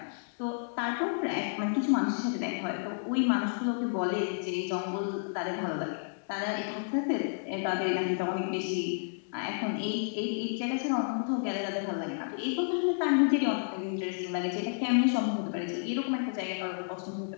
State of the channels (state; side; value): silent; right; digital silence